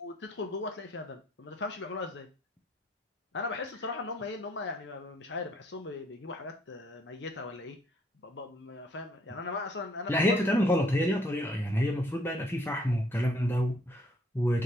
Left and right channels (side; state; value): both; normal; correlation 0.65